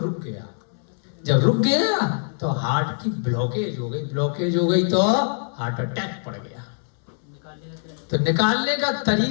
गया। जब रुक गया तो हार्ट की ब्लॉकेज हो गई, ब्लॉकेज हो गई तो हार्ट अटैक पड़ गया। तो निकालने का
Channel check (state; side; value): silent; right; digital silence